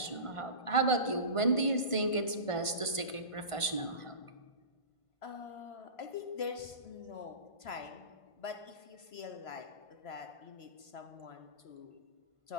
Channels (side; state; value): right; late; 1.5 ms